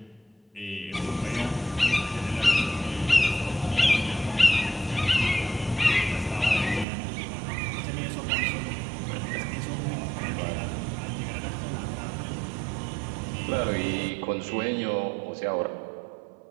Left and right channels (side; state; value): left; drops out; at 6.9 s